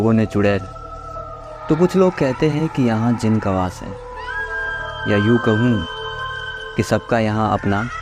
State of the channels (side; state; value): both; identical; correlation 1.00